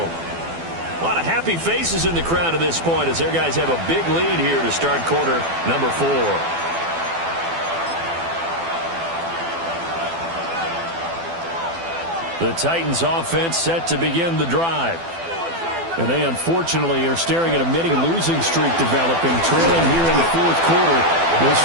A lot of happy faces in the crowd at this point as their guys have a big lead here to start quarter number 4. The Titans offense set to begin the drive. And they unfortunately are staring at a mini losing streak developing, trailing here in the 4th quarter. This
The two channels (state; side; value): late; left; 12 ms